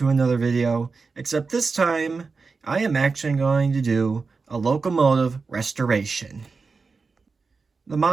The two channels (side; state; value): left; quieter; 4.5 dB